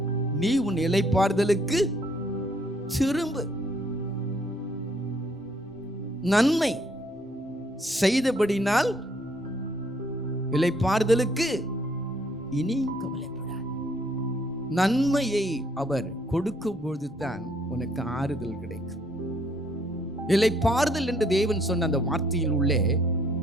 நீ உன் இளைப்பாறுதலுக்கு திரும்பு. நன்மை செய்தபடினால் இளைப்பாறுதலுக்கு இனியும் கவலைப்படாது. நன்மையை அவர் கொடுக்கும் பொழுதுதான் உனக்கு ஆறுதல் கிடைக்கும். இளைப்பாறுதல் என்று தேவன் சொன்ன அந்த வார்த்தையில் உள்ளே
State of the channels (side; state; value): both; normal; correlation 0.66